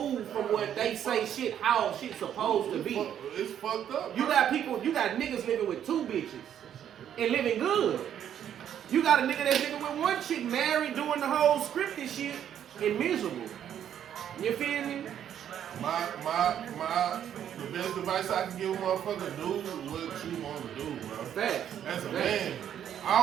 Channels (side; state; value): left; quieter; 9.8 dB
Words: from what they say shit, how shit's supposed to be. It's fucked up. You got niggas living with 2 bitches and living good. You got a nigga that's living with 1 chick married doing the whole scripted shit and miserable. You feel me? The best advice I can give a motherfucker, do what you want to do, bro. Facts. As a man, I